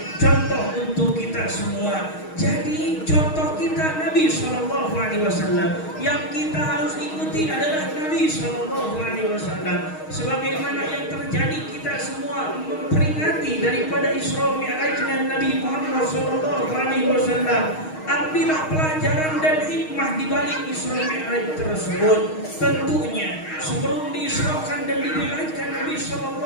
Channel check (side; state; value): right; late; 6.4 ms